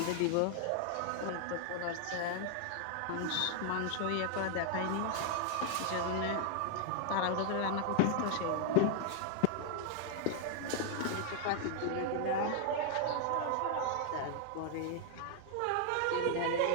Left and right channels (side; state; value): both; different; correlation 0.00